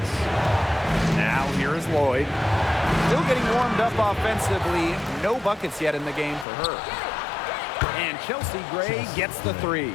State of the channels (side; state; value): right; drops out; at 6.5 s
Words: Now here is Lloyd. Still getting warmed up offensively. No buckets yet in the game for her. And Chelsea Gray gets the 3.